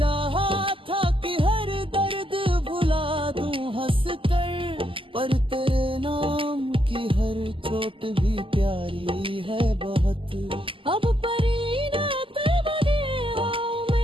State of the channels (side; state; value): left; late; 0.25 ms